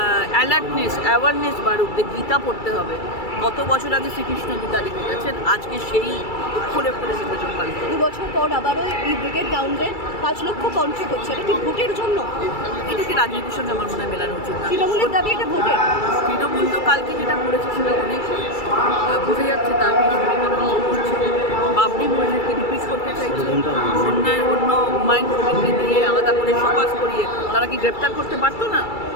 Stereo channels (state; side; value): late; right; 2.3 ms